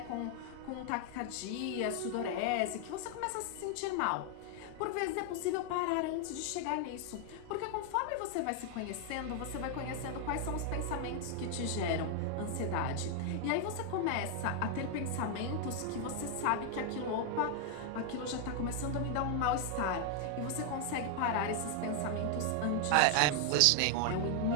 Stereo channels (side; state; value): both; different; correlation 0.00